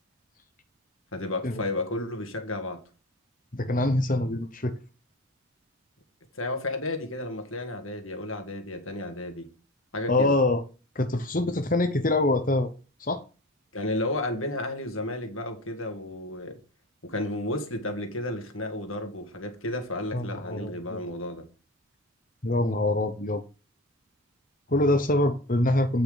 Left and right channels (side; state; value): both; normal; correlation 0.31